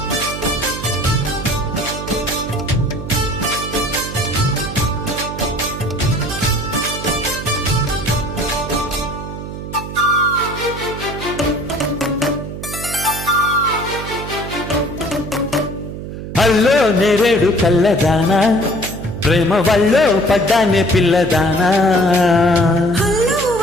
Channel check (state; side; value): noise; right; hum, 9 dB below the sound